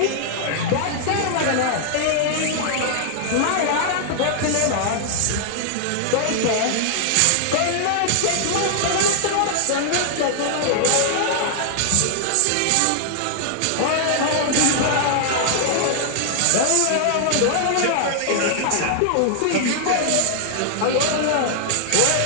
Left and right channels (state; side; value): different; both; correlation 0.00